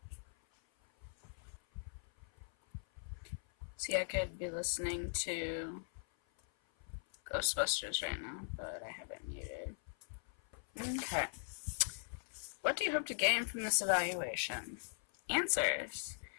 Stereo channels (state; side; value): silent; right; 51 dB below the other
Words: See, I could be listening to Ghostbusters right now, but I have it muted. Okay. What do you hope to gain from this evaluation? Answers.